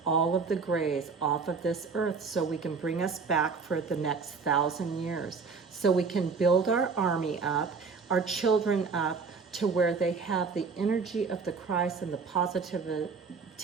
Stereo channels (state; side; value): quieter; left; 5.0 dB